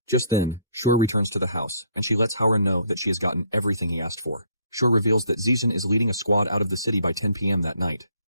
Just then, Shure returns to the house, and she lets Haoran know that she has gotten everything he asked for. Shure reveals that Zijin is leading a squad out of the city by 10 p.m. that night.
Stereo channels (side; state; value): both; inverted; correlation -0.64